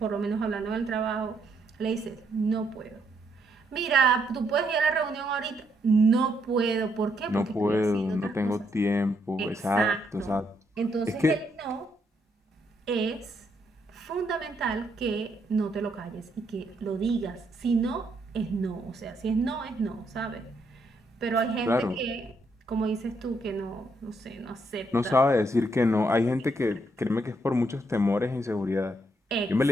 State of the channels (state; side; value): normal; both; correlation 0.75